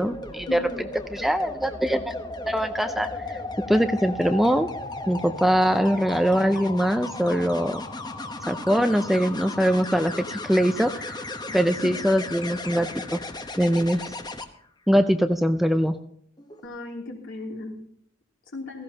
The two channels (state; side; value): normal; both; correlation 0.90